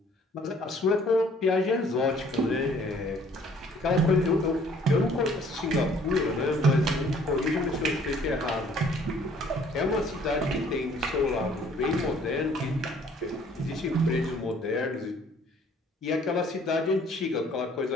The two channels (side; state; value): both; normal; correlation 0.58